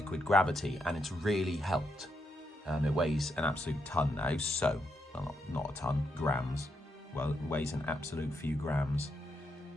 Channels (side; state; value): both; normal; correlation 0.80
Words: gravity, and it's really helped. It weighs an absolute ton now, so, well, not a ton, grams. Well, it weighs an absolute few grams.